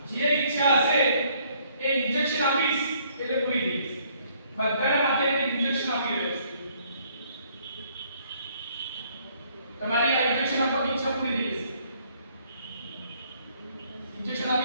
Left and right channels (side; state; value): both; inverted; correlation -0.64